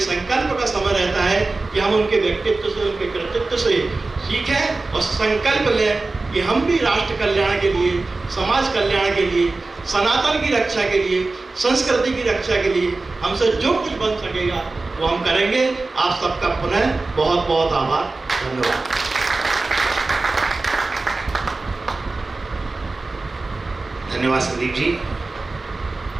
का समय रहता है कि हम उनके व्यक्तित्व से, उनके कृतित्व से सीखें और संकल्प लें कि हम भी राष्ट्र कल्याण के लिए, समाज कल्याण के लिए, सनातन की रक्षा के लिए, संस्कृति की रक्षा के लिए हमसे जो कुछ बन सकेगा वो हम करेंगे। आप सबका पुनः बहुत बहुत आभार, धन्यवाद। धन्यवाद संदीप जी,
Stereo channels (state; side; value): quieter; left; 3.5 dB